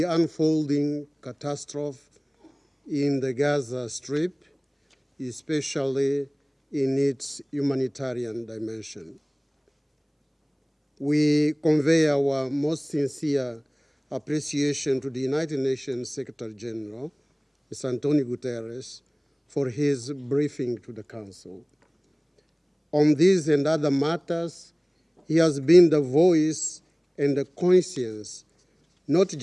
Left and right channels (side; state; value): both; identical; correlation 1.00